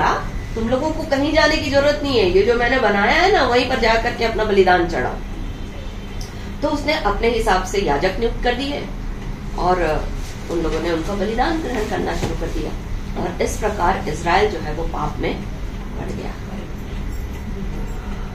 तुम लोगों को कहीं जाने की जरूरत नहीं है, ये जो मैंने बनाया है ना वहीं पर जाकर के अपना बलिदान चढ़ाओ। तो उसने अपने हिसाब से याजक नियुक्त कर दिए और उन लोगों ने उनका बलिदान ग्रहण करना शुरू कर दिया और इस प्रकार इजराइल जो है वो पाप में पड़ गया।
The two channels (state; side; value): identical; both; correlation 1.00